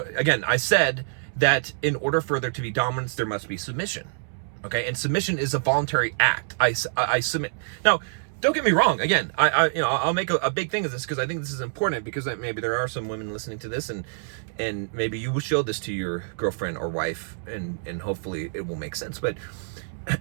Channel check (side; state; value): left; silent; 61 dB below the other